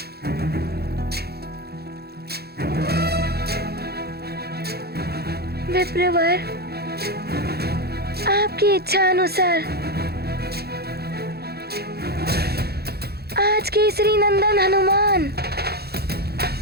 विप्रवर, आपकी इच्छा अनुसार आज केसरी नंदन हनुमान,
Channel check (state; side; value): late; left; 0.46 ms